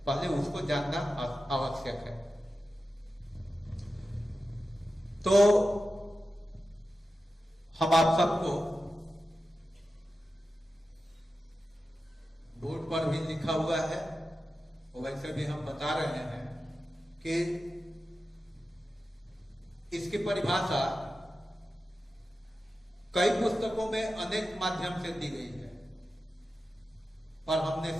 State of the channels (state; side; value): normal; both; correlation 0.92